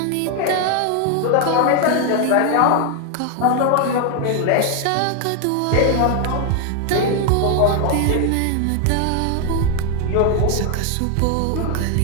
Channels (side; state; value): both; different; correlation 0.00